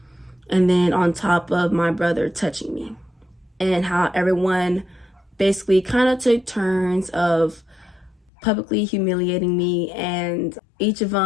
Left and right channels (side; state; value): right; drops out; at 8.3 s